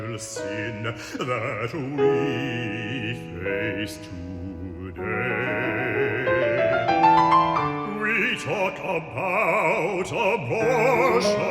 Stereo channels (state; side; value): identical; both; correlation 1.00